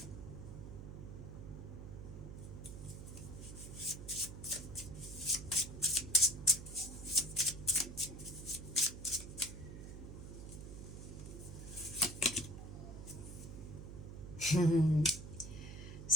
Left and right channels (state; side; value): noise; right; hum, 10 dB below the sound